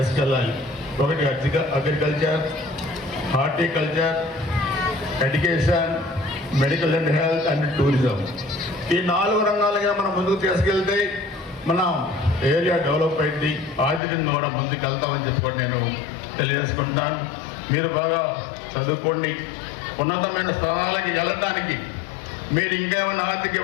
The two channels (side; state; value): right; drops out; at 14.0 s